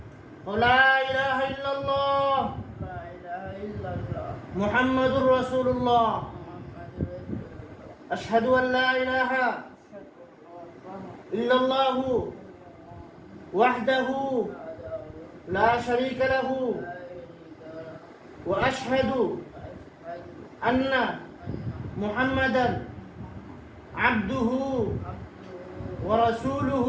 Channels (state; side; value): identical; both; correlation 1.00